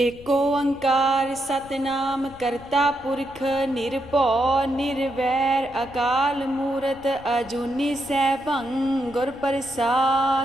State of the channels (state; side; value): noise; left; rumble, 21 dB below the sound